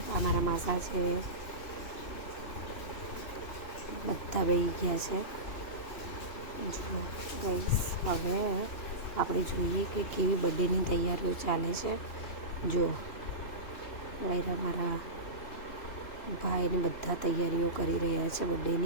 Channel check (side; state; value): right; late; 2.8 ms